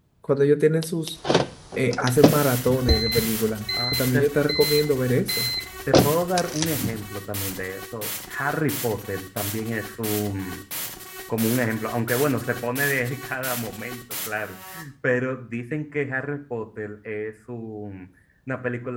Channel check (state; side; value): identical; both; correlation 1.00